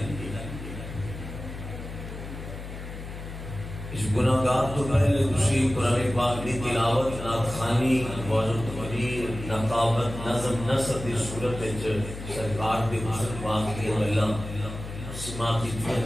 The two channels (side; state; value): left; noise; hum, 10 dB below the sound